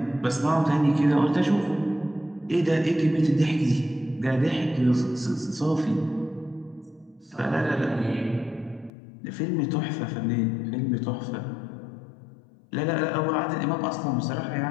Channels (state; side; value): drops out; right; at 8.9 s